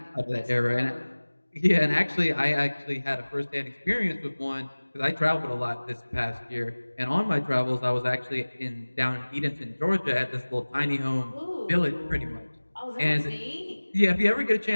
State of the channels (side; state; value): both; inverted; correlation -1.00